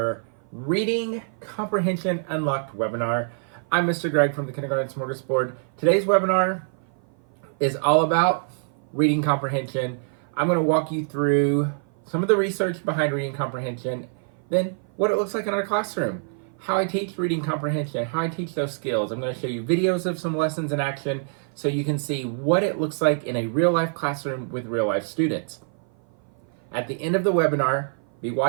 Reading Comprehension Unlocked webinar. I'm Mr. Greg from the Kindergarten Smorgasbord. Today's webinar is all about reading comprehension. I'm going to walk you through some of the research behind reading comprehension, then what it looks like in our classroom, how I teach reading comprehension, how I teach those skills. I'm going to show you videos of some lessons in action so you can see what it looks like in a real-life classroom with real-life students. At the end of the webinar, be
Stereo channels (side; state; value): left; silent; 56 dB below the other